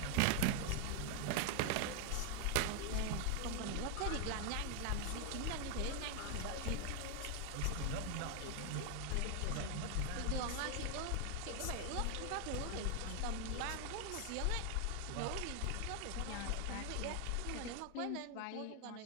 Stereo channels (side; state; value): both; different; correlation 0.01